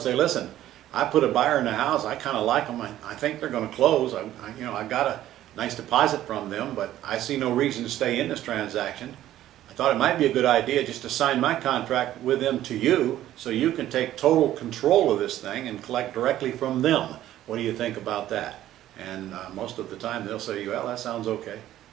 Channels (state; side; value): quieter; left; 13.2 dB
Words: listen, I put a buyer in the house, I kind of like them, I think they're going to close, I got a nice deposit from them, but I see no reason to stay in this transaction. I thought it might be a good idea just to sign my contract with them to you so you can take total control of this thing and collect directly from them. What do you think about that? And most of the time they'll say, well, that sounds okay.